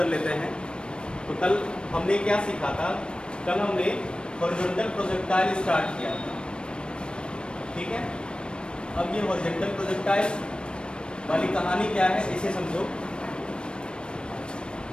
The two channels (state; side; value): late; right; 0.055 ms